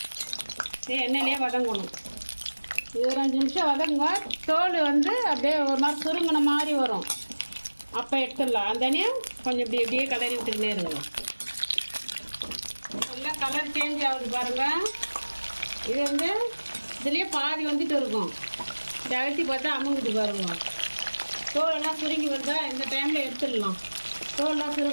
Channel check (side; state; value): both; inverted; correlation -1.00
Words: எண்ணெயிலே வதங்கணும். இது ஒரு 5 நிமிஷம் வதங்குங்க. தோல் வந்து அப்படியே ஒரு மாதிரி சுருங்கின மாதிரி வரும். அப்போ எடுத்துடலாம். அந்த எண்ணெயும் கொஞ்சம் இப்படியே கலரி விட்டுக்கிட்டே இருங்க. நல்லா கலர் சேஞ்ச் ஆகுது பாருங்கள். இது வந்து இதுலேயே பாதி வந்துட்டு இருக்கும். இந்த அழுத்தி பார்த்தா அமுங்குது பாருங்க. தோலெல்லாம் சுருங்கி வந்தால் இந்த டைமில் எடுத்துடலாம். தோலெல்லாம்